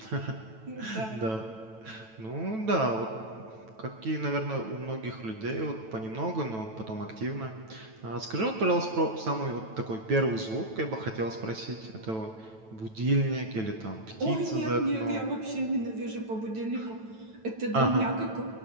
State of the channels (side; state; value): left; late; 9.1 ms